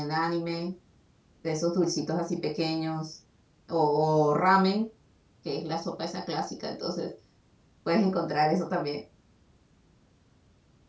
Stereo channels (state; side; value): identical; both; correlation 1.00